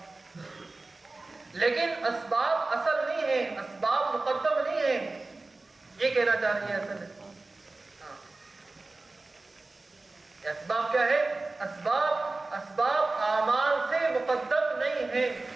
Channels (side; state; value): left; quieter; 3.3 dB